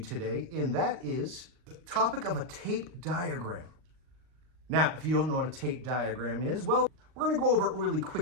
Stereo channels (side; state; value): left; late; 39 ms